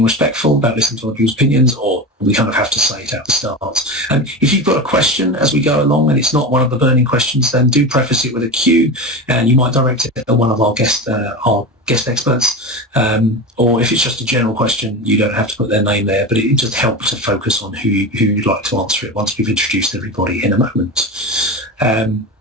respectful, about listening to other people's opinions, or we kind of have to say it at the start. And if you've got a question as we go along and it's not one of the burning questions, then do preface it with a Q, and you might direct it at one of our guest experts. Or if it's just a general question, you don't have to put their name there, but it just helps to focus on who you'd like to answer it once we've introduced everybody in a moment.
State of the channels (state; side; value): normal; both; correlation 0.24